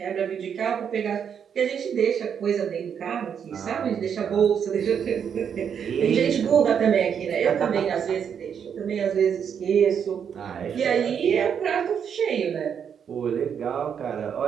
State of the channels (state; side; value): quieter; left; 7.7 dB